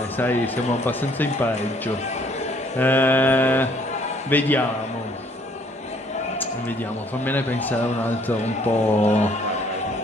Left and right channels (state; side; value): normal; both; correlation 0.62